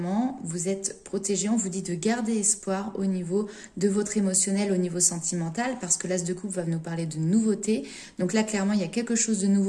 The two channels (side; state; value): both; identical; correlation 1.00